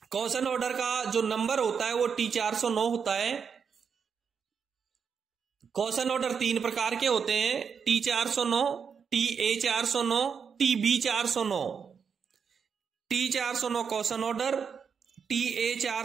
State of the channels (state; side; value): quieter; left; 6.5 dB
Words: कॉशन ऑर्डर का जो नंबर होता है वो T409 होता है। कॉशन ऑर्डर 3 प्रकार के होते हैं, T409, TA409, TB409। T409 caution order,